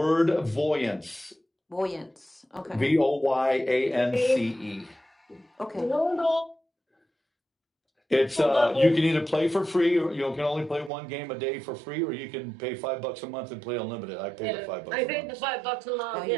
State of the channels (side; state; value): left; drops out; at 10.9 s